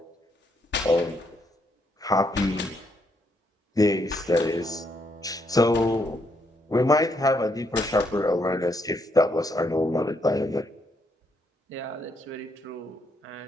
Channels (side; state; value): both; normal; correlation 0.75